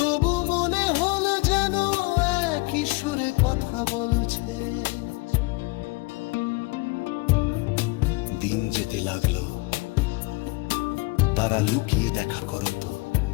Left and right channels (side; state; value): right; quieter; 25.2 dB